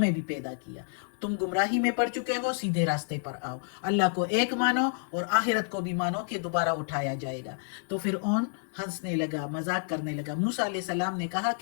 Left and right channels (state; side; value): silent; right; digital silence